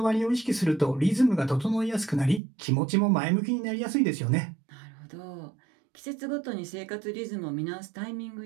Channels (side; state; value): left; drops out; at 2.4 s